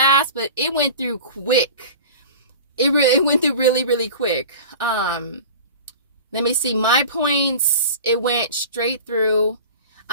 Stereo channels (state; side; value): inverted; both; correlation -0.37